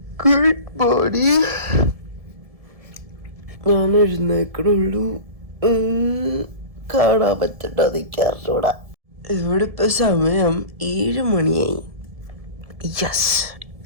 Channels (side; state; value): left; late; 1.7 ms